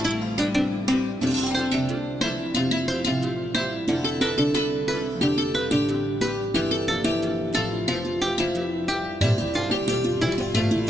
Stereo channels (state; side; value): normal; both; correlation 0.81